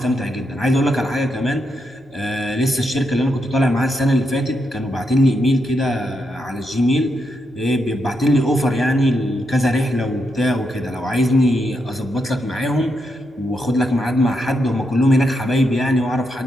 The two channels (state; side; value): normal; both; correlation 0.82